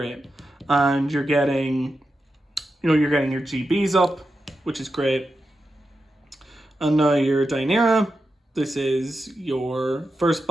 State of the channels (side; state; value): both; normal; correlation 0.89